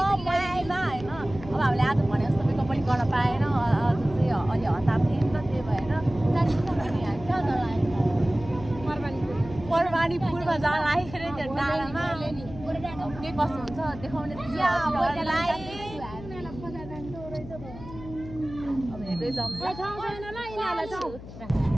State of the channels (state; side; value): noise; left; hum, 14 dB below the sound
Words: पहिला होइन। अब हामीले आज भने जस्तो मेकअप पनि गर्न पाएन, अझ चाहिँ अलि हतार थिएँ नि त, त्यही भएर परवानीपुरमा जान लागेको अरे त्यो डाँडामा। के कस्तो हुन्छ देखाउने अब हेर्दै जाउँ।